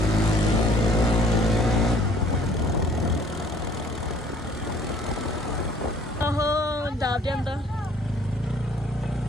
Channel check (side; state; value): both; normal; correlation 0.58